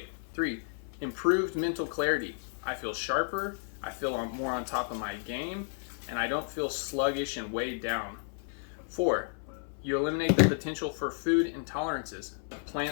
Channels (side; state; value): right; silent; 56 dB below the other